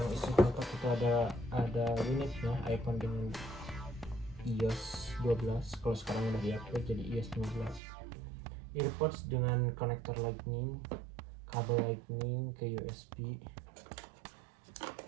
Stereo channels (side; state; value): left; drops out; at 7.8 s